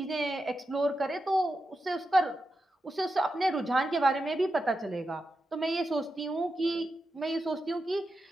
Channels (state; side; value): normal; both; correlation 0.88